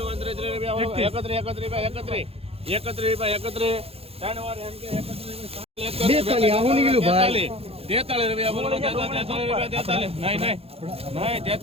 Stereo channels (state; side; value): late; left; 0.29 ms